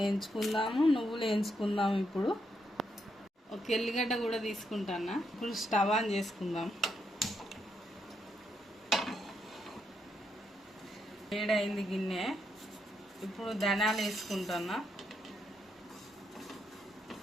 నువ్వులు వేయించుకుందాము. ఇప్పుడు ఒక ఎల్లిగడ్డ కూడా తీసుకుంటాను. ఇప్పుడు స్టవ్ ఆన్ చేసుకుందాం. వేడైంది గిన్నె. ఇప్పుడు ధనియాలు వేసుకుంటున్నా.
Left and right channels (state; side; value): normal; both; correlation 0.80